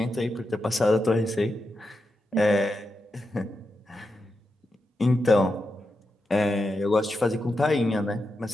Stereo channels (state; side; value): normal; both; correlation 0.87